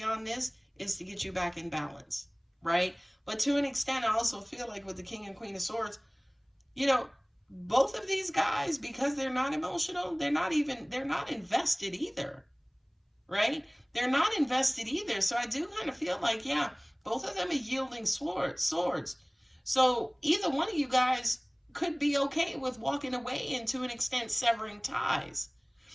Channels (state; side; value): identical; both; correlation 1.00